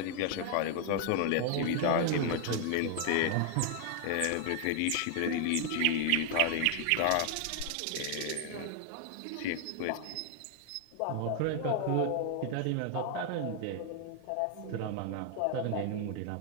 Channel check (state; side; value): different; both; correlation 0.00